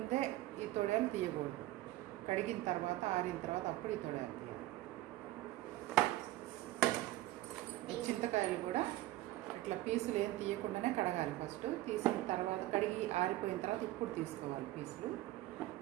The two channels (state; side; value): quieter; left; 16.5 dB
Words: ఈ తొడియాలు తీయకూడదు. కడిగిన తర్వాత ఆరిన తర్వాత అప్పుడు ఈ తొడియాలు తీయాలి. ఈ చింతకాయలు కూడా ఇట్లా పీసులు ఏం తీయకుండానే కడగాలి. ఫస్ట్ తీసిన తర్వాత కడిగి ఆరిపోయిన తర్వాత ఇప్పుడు తీసుకోవాలి పీసులు.